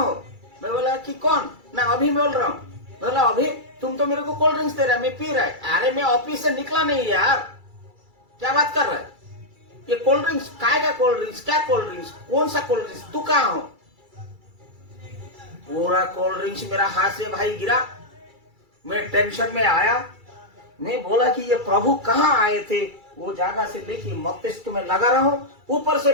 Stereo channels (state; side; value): late; left; 2.3 ms